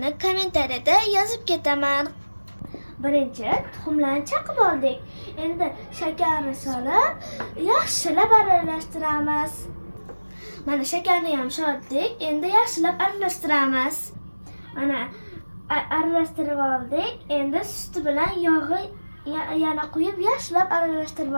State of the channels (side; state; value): both; inverted; correlation -1.00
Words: kommentariyada yozib ketaman. Birinchi tuxumlarni chaqib oldik. Endi shakarni solib, yaxshilab aralashtiramiz. Mana shakarni ham soldik. Endi yaxshilab aralashtiramiz. Mana aralashtirib oldik. Endi suti bilan yog'i yana quyib yaxshilab aralashtirib